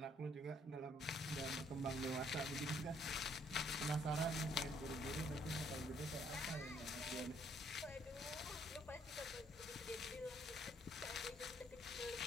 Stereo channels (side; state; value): both; normal; correlation 0.66